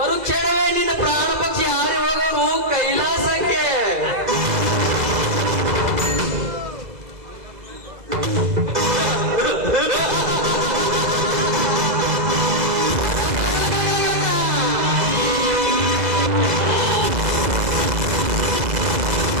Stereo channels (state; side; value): late; left; 2.0 ms